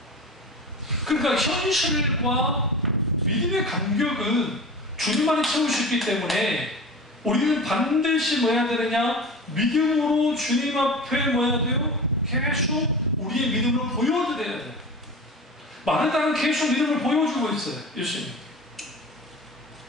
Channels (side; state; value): both; normal; correlation 0.33